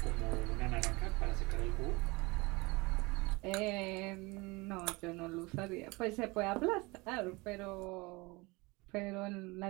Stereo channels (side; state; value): left; quieter; 24.6 dB